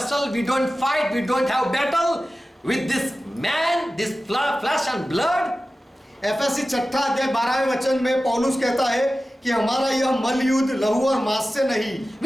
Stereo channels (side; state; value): both; normal; correlation 0.95